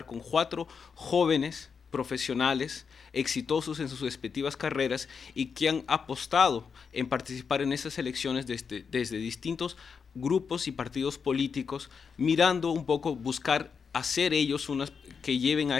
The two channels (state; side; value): quieter; right; 6.0 dB